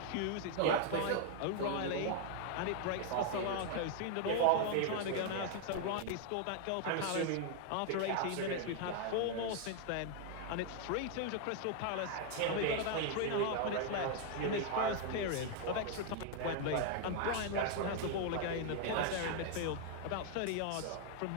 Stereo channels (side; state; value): both; different; correlation 0.00